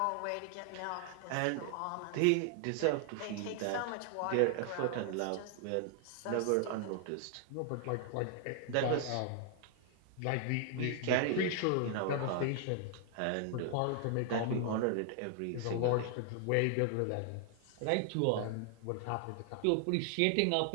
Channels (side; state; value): both; different; correlation 0.00